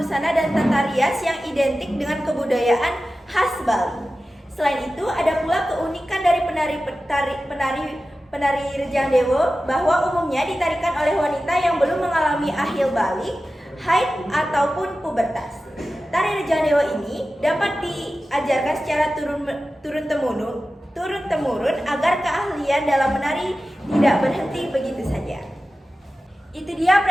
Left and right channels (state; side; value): normal; both; correlation 0.94